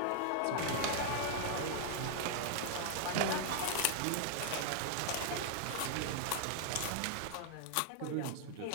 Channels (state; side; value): different; both; correlation -0.01